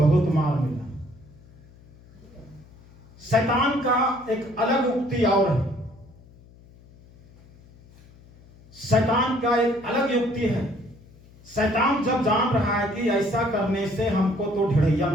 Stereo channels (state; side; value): noise; left; hum, 25 dB below the sound